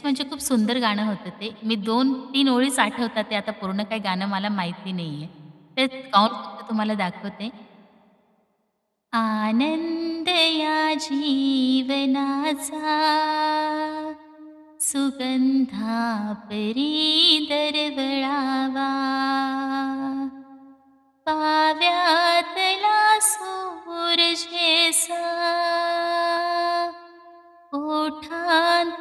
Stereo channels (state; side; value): identical; both; correlation 1.00